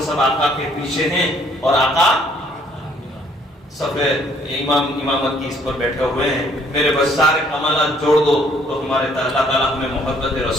سب آقا کے پیچھے ہیں, اور آقا سب امامت کی اس پر بیٹھے ہوئے ہیں. میرے بس سارے کمالات جوڑ دو تو ہمارے اللہ تعالیٰ ہمیں محبت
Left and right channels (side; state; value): both; normal; correlation 0.63